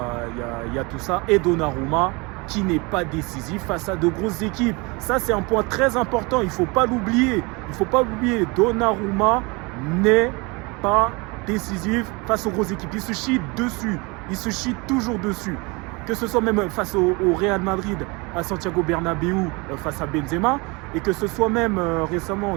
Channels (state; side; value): quieter; left; 27.3 dB